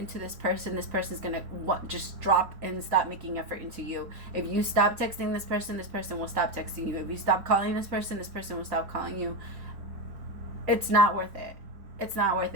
this person's going to just drop and stop making effort into you. If you stop texting this person will stop texting you. If you stop calling this person will stop calling you. It's not worth it. It's not worth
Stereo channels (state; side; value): late; left; 4.1 ms